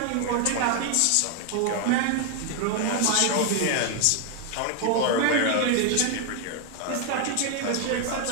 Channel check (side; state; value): both; different; correlation 0.01